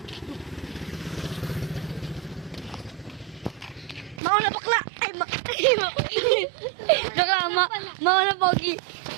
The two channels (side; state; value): left; drops out; at 4.2 s